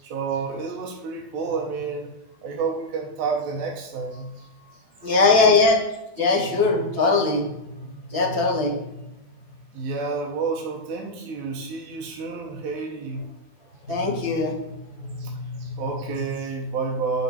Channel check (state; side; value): late; left; 12 ms